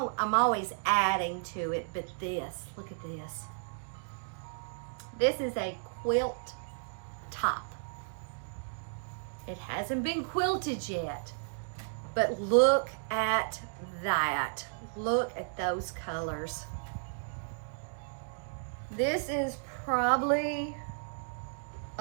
always adding to it, but this, look at this. This is a quilt top. It hasn't been quilted yet, but look at that. Look at those colors. This is probably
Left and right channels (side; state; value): left; silent; digital silence